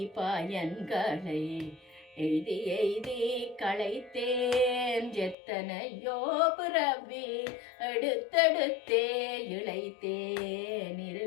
பயன்களை எய்தி எய்தி களைத்தேன். எத்தனையோ பிறவி எடுத்தெடுத்தே இளைத்தேன்,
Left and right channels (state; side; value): drops out; right; at 5.4 s